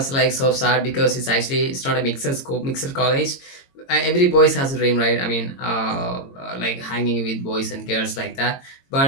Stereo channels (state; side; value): late; right; 22 ms